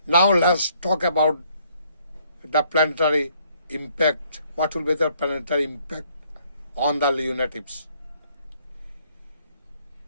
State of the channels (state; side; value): inverted; both; correlation -0.66